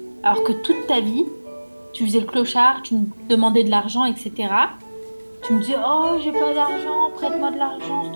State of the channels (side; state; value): both; inverted; correlation -1.00